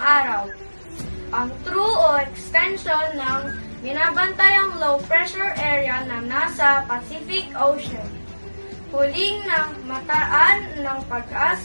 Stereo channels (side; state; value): both; inverted; correlation -1.00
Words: araw. Ang true o extension ng binabantayang low pressure area na nasa Pacific Ocean. Huling na mataan ng